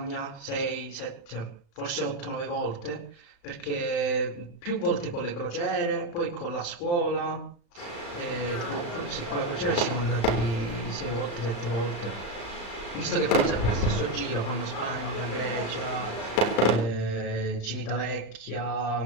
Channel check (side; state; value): right; late; 35 ms